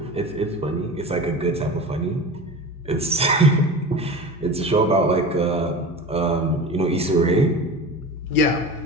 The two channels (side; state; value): both; normal; correlation 0.33